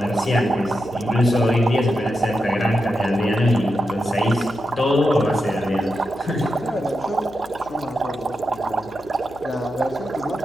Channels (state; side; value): noise; left; hum, 21 dB below the sound